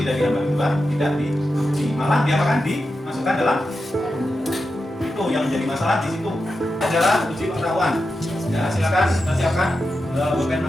dari hamba kedua tidak diampuni? Malah dia akan dimasukkan dalam itu yang menjadi masalah di situ adalah uji pengetahuan. Ya, silakan kita siapkan pulpen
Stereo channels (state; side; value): normal; both; correlation 0.89